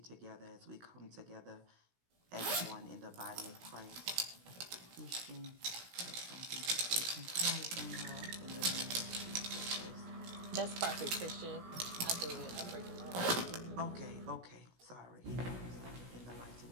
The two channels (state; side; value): late; left; 16 ms